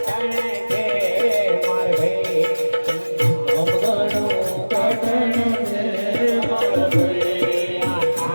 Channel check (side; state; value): both; inverted; correlation -1.00